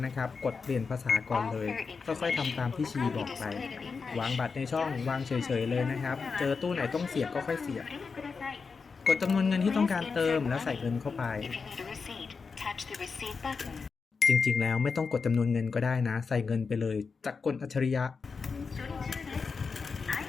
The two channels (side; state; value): right; quieter; 5.0 dB